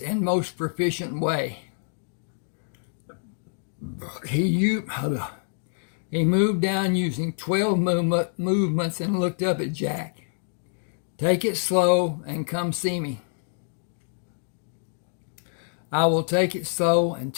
and most proficient way. He moved down using 12 movements and looked up at Jack. Take it slow and come see me. I will take it slow and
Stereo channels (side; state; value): right; silent; digital silence